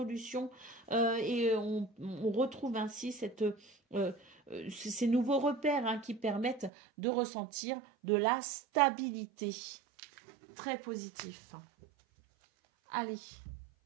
et on retrouve ainsi ces nouveaux repères, hein, qui permettent de ressentir de la stabilité. Très positif. Allez.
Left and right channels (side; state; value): left; drops out; at 6.7 s